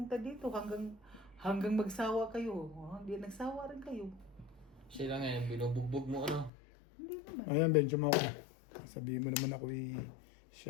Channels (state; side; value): drops out; right; at 6.5 s